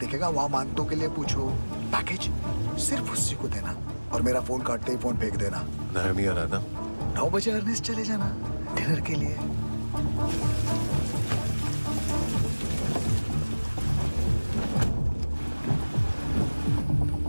दिखेगा, वहां मानतो के लिए पूछो। पैकेज सिर्फ उसी को देना और मेरा फोन काटते ही फोन फेंक देना। नायोमी आ रहा ना? 9 बजे अर्नेस्ट चले जाना डिनर के लिए।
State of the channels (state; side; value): inverted; both; correlation -1.00